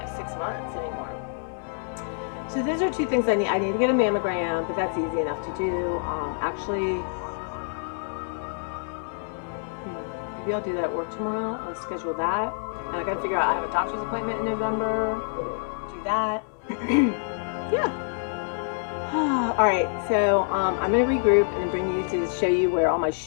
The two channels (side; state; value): right; silent; 60 dB below the other